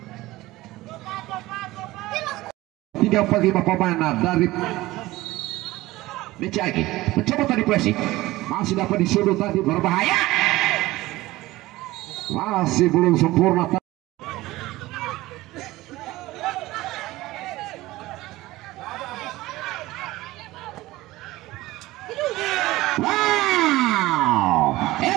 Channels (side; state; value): left; quieter; 18.2 dB